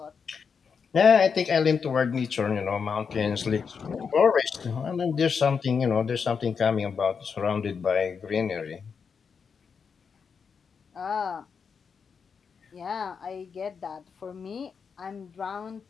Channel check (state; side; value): quieter; right; 6.0 dB